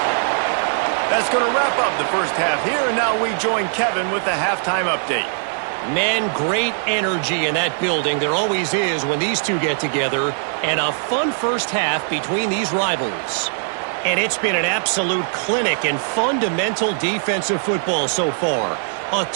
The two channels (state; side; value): silent; left; digital silence